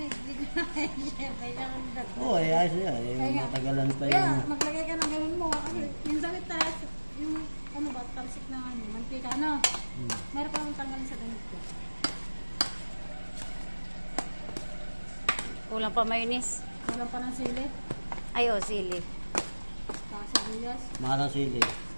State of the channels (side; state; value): both; inverted; correlation -1.00